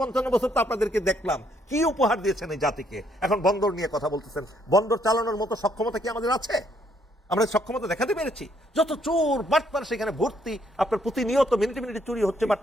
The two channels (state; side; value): normal; both; correlation 0.70